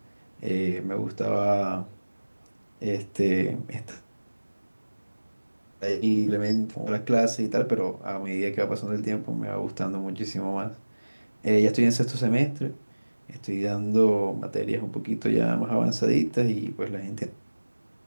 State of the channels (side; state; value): both; inverted; correlation -1.00